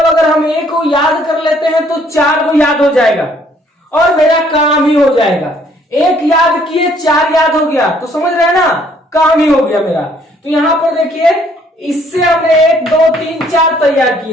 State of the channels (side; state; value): both; normal; correlation 0.63